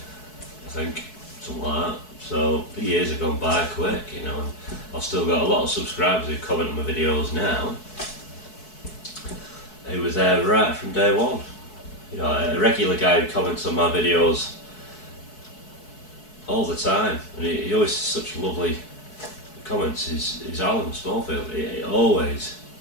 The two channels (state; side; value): late; right; 4.6 ms